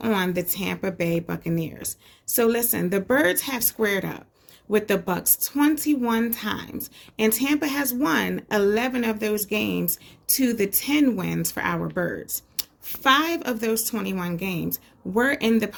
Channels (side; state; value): both; identical; correlation 1.00